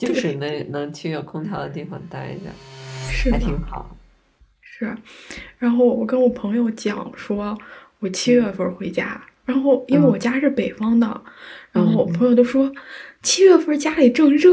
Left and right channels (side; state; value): both; identical; correlation 1.00